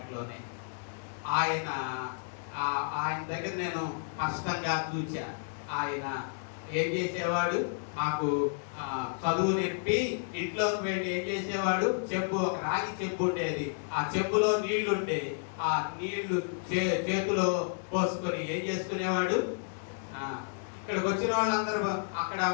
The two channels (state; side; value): silent; right; digital silence